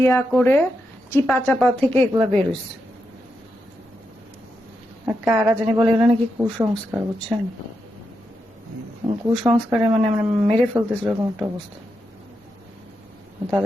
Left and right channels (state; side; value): normal; both; correlation 0.85